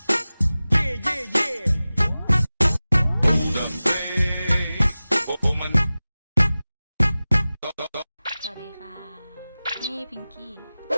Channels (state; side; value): inverted; both; correlation -0.97